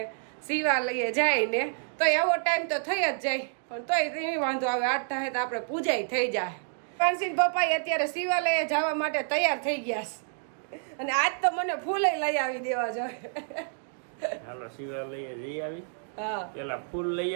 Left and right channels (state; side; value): silent; left; digital silence